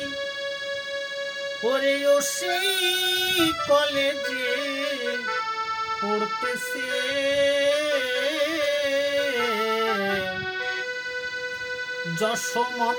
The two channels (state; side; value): identical; both; correlation 1.00